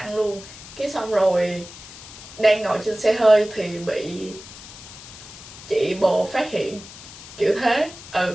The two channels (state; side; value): noise; left; hiss, 16 dB below the sound